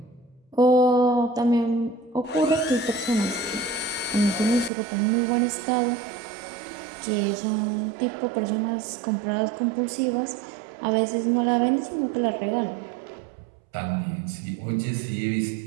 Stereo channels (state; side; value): drops out; left; at 4.7 s